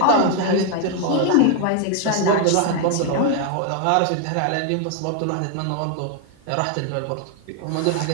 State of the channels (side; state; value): both; different; correlation 0.00